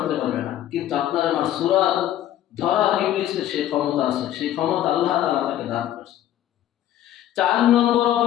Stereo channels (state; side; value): quieter; right; 12.2 dB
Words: পারবে না, কিন্তু আপনার আমার সূরাত ধরা ইবলিসের সেই ক্ষমতা আছে, সেই ক্ষমতা আল্লাহ তাআলা তাকে দান করেছে। 4 নম্বর